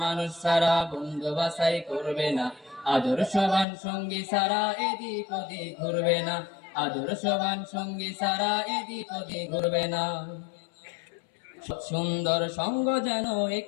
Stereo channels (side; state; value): right; drops out; at 3.7 s